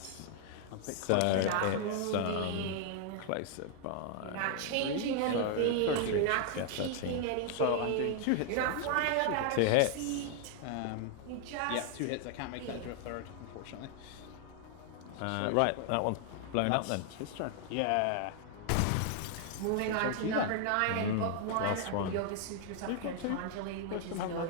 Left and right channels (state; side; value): different; both; correlation 0.00